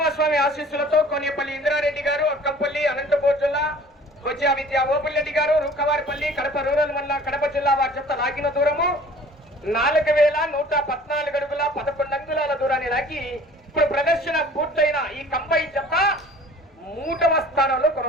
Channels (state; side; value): normal; both; correlation 0.48